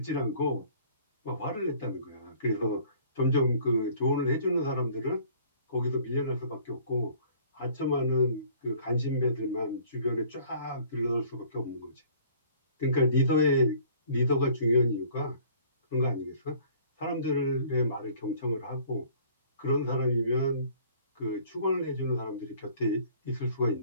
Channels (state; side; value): inverted; both; correlation -0.54